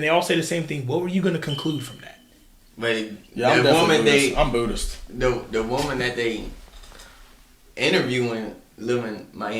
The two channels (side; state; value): both; identical; correlation 1.00